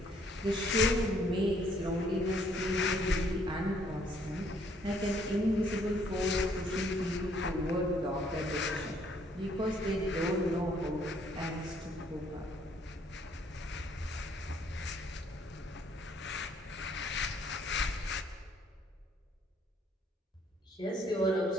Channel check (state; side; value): normal; both; correlation 0.65